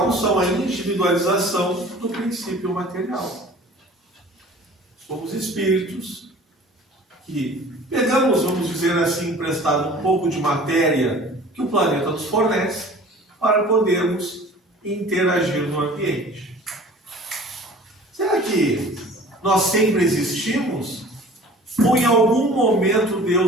são a individualização do princípio material. Somos espíritos que pegamos, vamos dizer assim, emprestado um pouco de matéria que o planeta nos fornece para podermos interagir no ambiente. Será que nós sempre existimos? Ou em algum momento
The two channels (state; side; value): normal; both; correlation 0.46